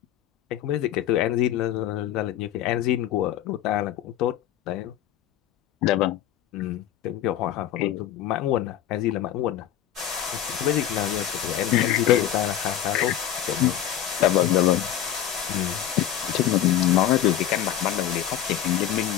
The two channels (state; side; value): quieter; right; 11.1 dB